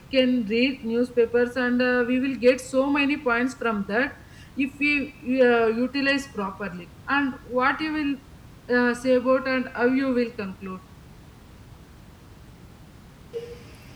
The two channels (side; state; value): both; identical; correlation 1.00